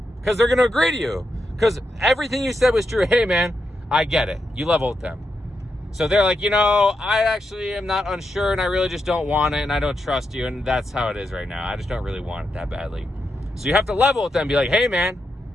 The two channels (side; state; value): both; normal; correlation 0.85